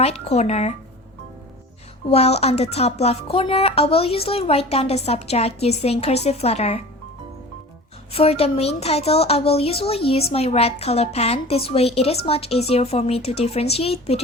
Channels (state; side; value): normal; both; correlation 0.39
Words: corner. While on the top left corner, I will usually write down the subject using cursive letter. For the main title, I will usually use my red color pen. This way it is much easier for me to differentiate